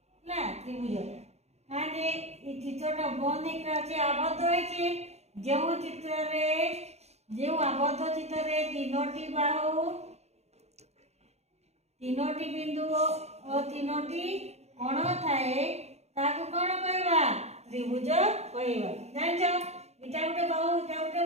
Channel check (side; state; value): left; late; 0.31 ms